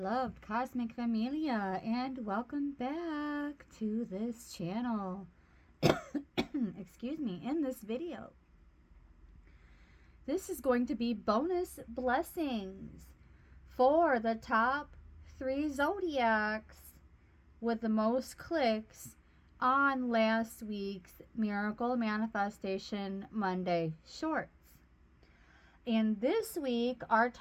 cosmic familia, and welcome back to this channel. Excuse me, in this video. This is going to be bonus blessings for the top 3 zodiacs with the most clicks on last week's Miracle Manifestation Monday short. And this week, our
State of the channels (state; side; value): identical; both; correlation 1.00